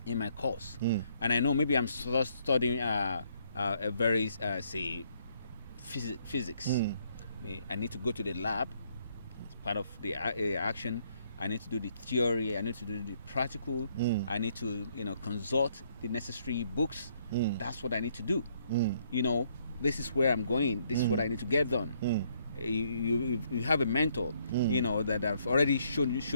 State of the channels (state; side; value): inverted; both; correlation -0.70